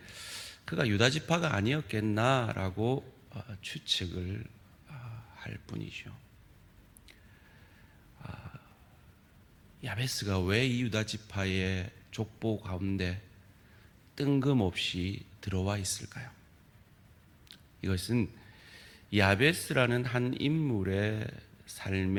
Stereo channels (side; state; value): both; identical; correlation 1.00